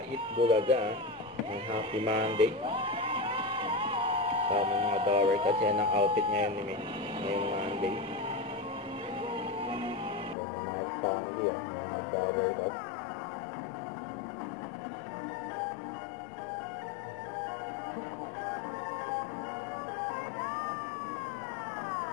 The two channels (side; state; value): right; drops out; at 10.4 s